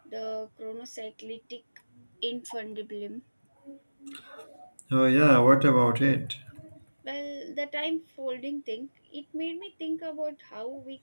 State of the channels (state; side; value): inverted; both; correlation -1.00